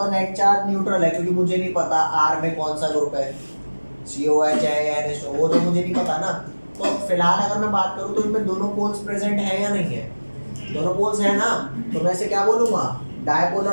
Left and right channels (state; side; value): inverted; both; correlation -1.00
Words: नेट चार्ज न्यूट्रल है क्योंकि मुझे नहीं पता R में कौन सा ग्रुप है, COH है या NH2, वो तो मुझे नहीं पता ना। तो फिलहाल अगर मैं बात करूँ तो इनमें दोनों पोल्स प्रेजेंट है या नहीं है, दोनों पोल्स है ना, तो मैं इसे क्या बोलूँगा,